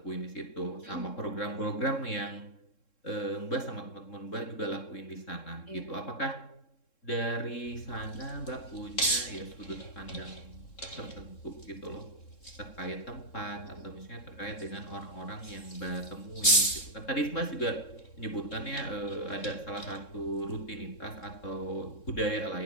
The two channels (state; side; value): late; right; 3.7 ms